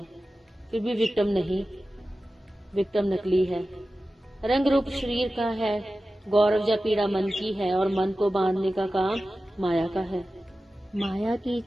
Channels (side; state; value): both; normal; correlation 0.94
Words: फिर भी विक्टिम नहीं। विक्टिम नकली है। रंग रूप शरीर का है, गौरव या पीड़ा मन की है, और मन को बांधने का काम माया का है। माया की